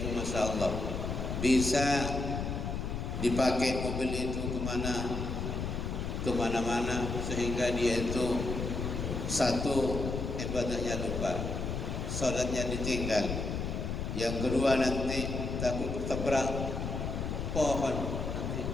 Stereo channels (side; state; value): left; noise; rumble, 3 dB below the sound